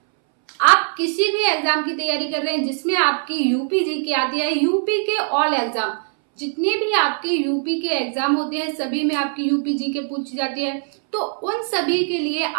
आप किसी भी एग्जाम की तैयारी कर रहे हैं जिसमें आपकी यूपी जीके आती है, यूपी के ऑल एग्जाम जितने भी आपके यूपी के एग्जाम होते हैं सभी में आपकी यूपी जीके पूछी जाती है, तो उन सभी के लिए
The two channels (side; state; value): left; silent; 64 dB below the other